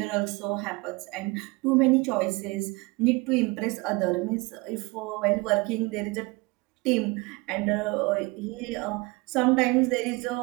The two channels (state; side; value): quieter; left; 24.7 dB